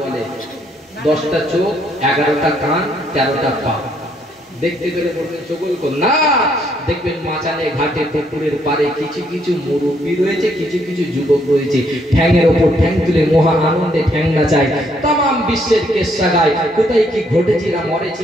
বলে 10টা চোখ 11টা কান 13টা পা দেখতে গেলে বলবেন চগলখড় না দেখবেন মাচানে ঘাটে পুকুরের পারে কিছু কিছু মুরব্বি রয়েছে কিছু কিছু যুবক রয়েছে ঠ্যাঙের উপর ঠ্যাং তুলে মহা আনন্দে ঠ্যাং নাচায় तमाम বিশ্বের কেসা গায় কোথায় কি ঘটেছে না মরে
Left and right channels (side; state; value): both; normal; correlation 0.70